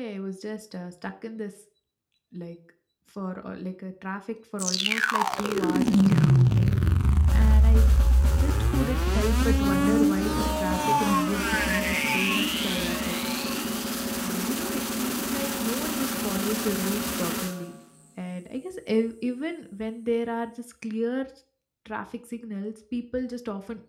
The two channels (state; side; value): identical; both; correlation 1.00